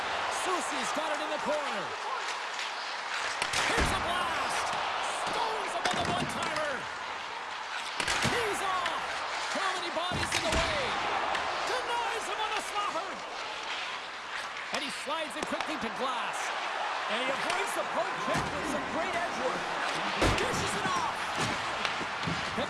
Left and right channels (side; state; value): both; identical; correlation 1.00